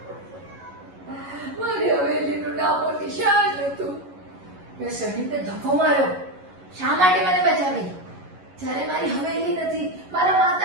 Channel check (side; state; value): left; late; 11 ms